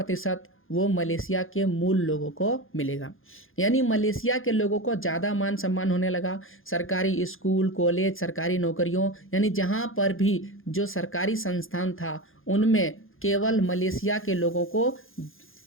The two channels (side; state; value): right; late; 0.60 ms